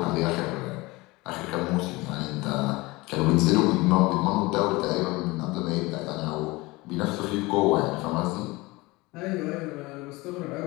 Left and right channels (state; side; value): quieter; right; 22.4 dB